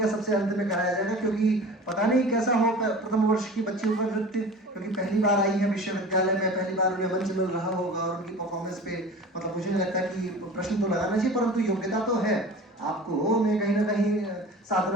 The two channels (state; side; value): normal; both; correlation 0.38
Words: सबसे अंत में कराया जाएगा, क्योंकि पता नहीं कैसा हो प्रथम वर्ष की बच्चियों का नृत्य, क्योंकि पहली बार आई है विश्वविद्यालय में, पहली बार उन्हें मंच मिल रहा होगा और उनकी परफॉर्मेंस पे मतलब मुझे नहीं लगता कि प्रश्न तो लगाना चाहिए, परंतु योग्यता तो है आपको में कहीं ना कहीं